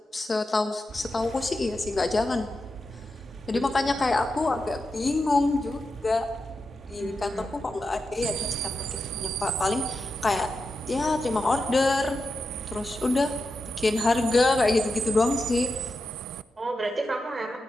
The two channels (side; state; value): both; normal; correlation 0.88